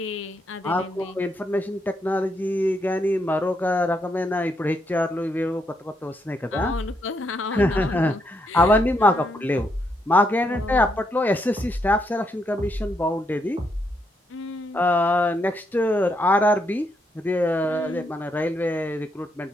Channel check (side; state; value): both; normal; correlation 0.77